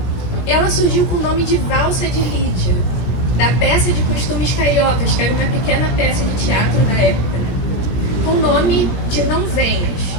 Ela surgiu com o nome de Valsa de Lídia, da peça de costumes cariocas, que era uma pequena peça de teatro da época, né? Com o nome de Não Venhas.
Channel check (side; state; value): right; late; 17 ms